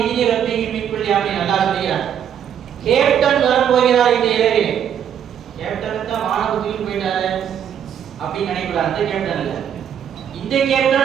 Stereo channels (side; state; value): left; quieter; 8.9 dB